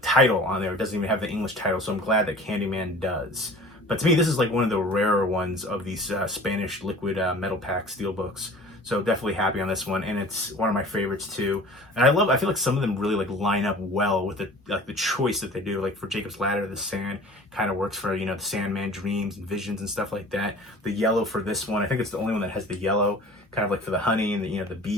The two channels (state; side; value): normal; both; correlation 0.44